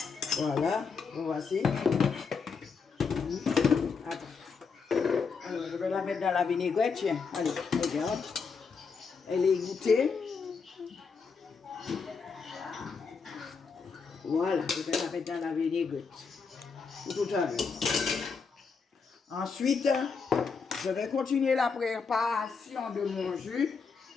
Voilà, voici. Attends. Alors, je vais la mettre dans la vinaigrette. Tiens, allez, regarde. Elle est égouttée. Voilà, je vais la mettre dans la vinaigrette. Tout à l'heure. Ensuite, je vais continuer la préparation de mon jus.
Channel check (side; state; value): right; quieter; 5.3 dB